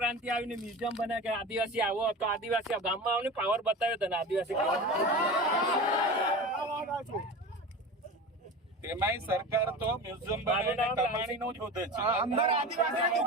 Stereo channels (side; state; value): both; normal; correlation 0.31